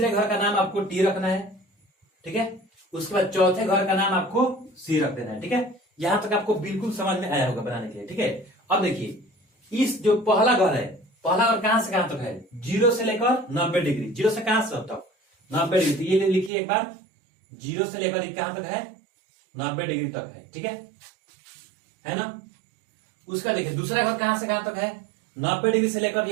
घर का नाम आपको टी रखना है। ठीक है, उसके बाद चौथे घर का नाम आपको सी रख देना है। ठीक है, यहां तक आपको बिल्कुल समझ में आया होगा बनाने के लिए। ठीक है, अब देखिए, इस जो पहला घर है, पहला घर कहां से कहां तक है, 0 से लेकर 90 डिग्री। 0 से कहां से तक 90 डिग्री, तो ये लिखिए एक बार, 0 से लेकर कहां तक है, 90 डिग्री तक है। ठीक है ना। उसका देखिए दूसरा घर कहां से कहां तक है, 90 डिग्री से लेकर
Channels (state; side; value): drops out; left; at 16.5 s